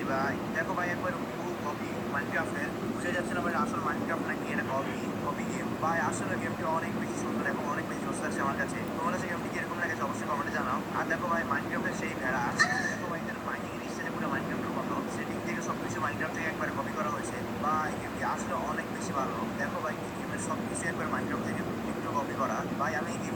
ভাই। দেখো ভাই একবার পুরো কপি মাইনক্রাফটের, বুঝে যাচ্ছে না ভাই আসল মাইনক্রাফট নাকি এটা কপি কপি গেম। ভাই আসলে গেমটি অনেক বেশি সুন্দর এবং অনেক বেশি জোস আছে আমার কাছে। তোমার কাছে গেমটি কিরকম লাগেছে অবশ্যই কমেন্টে জানাও। আর দেখো ভাই মাইনক্রাফটের সেই ভেড়া, দেখো ভাই এখানে মাইনিং স্টাইলে পুরো মাইনক্রাফটের মতো সেটিং থেকে সব কিছু মাইনক্রাফট থেকে একবার কপি করা হয়েছে। ভাই গেমটি আসলে অনেক বেশি ভালো। দেখো ভাই এই গেমের সব কিছু একবার মাইনক্রাফট থেকে একটু কপি করা। ভাই আমি এই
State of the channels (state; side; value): identical; both; correlation 1.00